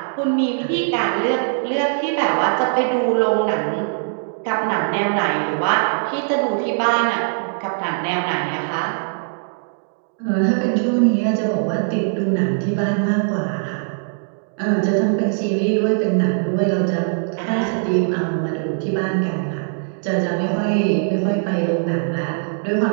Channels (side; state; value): left; silent; digital silence